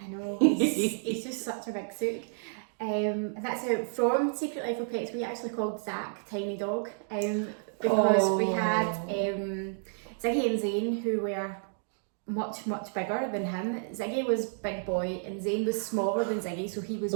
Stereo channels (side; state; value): left; silent; digital silence